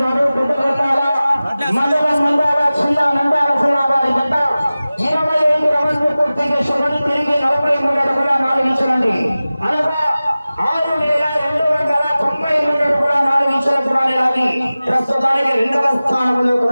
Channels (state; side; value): inverted; both; correlation -0.97